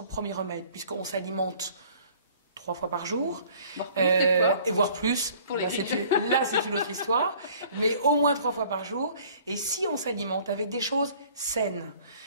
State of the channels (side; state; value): both; inverted; correlation -0.53